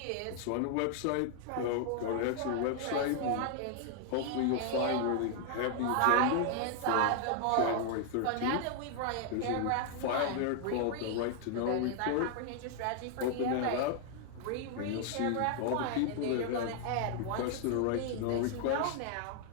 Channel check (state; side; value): different; both; correlation 0.00